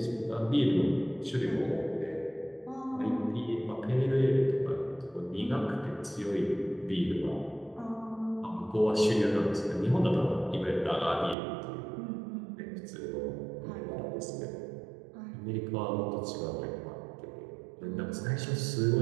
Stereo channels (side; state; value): left; drops out; at 11.4 s